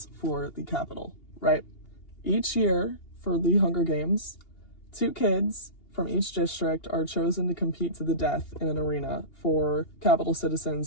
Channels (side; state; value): right; late; 2.8 ms